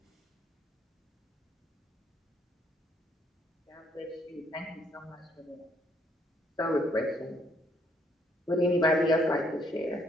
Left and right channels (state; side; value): normal; both; correlation 0.69